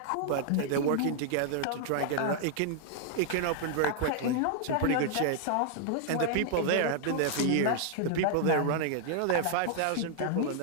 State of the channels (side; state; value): both; different; correlation 0.00